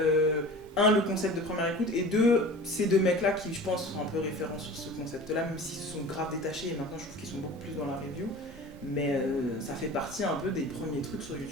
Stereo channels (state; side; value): normal; both; correlation 0.38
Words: le concept de première écoute, et ces deux mecs-là qui, je pense, sont un peu référents sur ce concept-là, même s'ils se sont grave détachés, et maintenant je trouve qu'ils sont beaucoup plus dans la review, mais ça fait partie un peu des premiers trucs sur